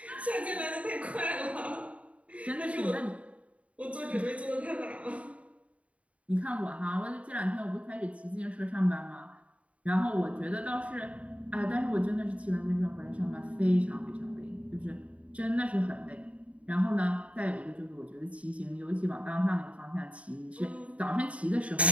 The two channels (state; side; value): late; left; 0.065 ms